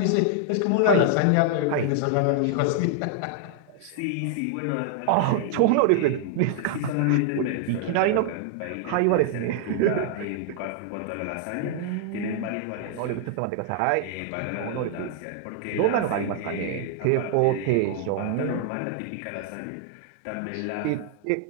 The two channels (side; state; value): both; different; correlation 0.00